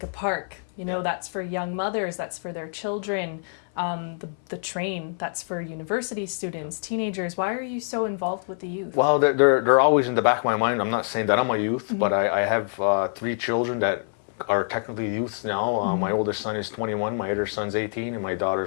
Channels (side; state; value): right; silent; 61 dB below the other